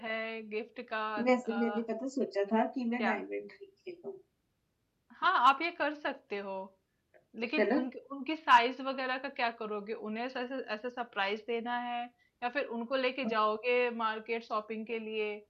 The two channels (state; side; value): identical; both; correlation 1.00